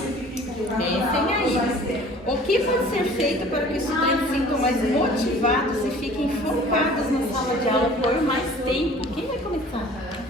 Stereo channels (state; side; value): normal; both; correlation 0.48